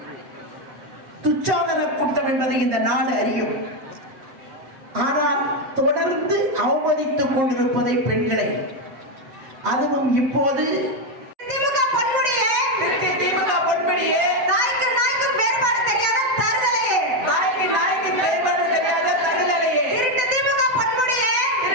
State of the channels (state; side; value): late; left; 7.2 ms